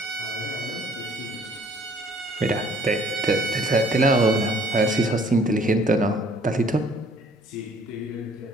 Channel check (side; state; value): both; normal; correlation 0.59